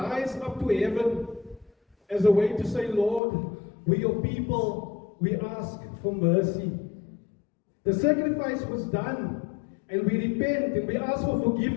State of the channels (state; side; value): drops out; right; at 3.2 s